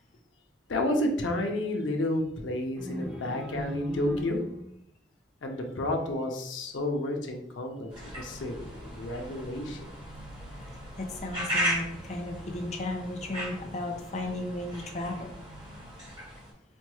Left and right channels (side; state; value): both; normal; correlation 0.46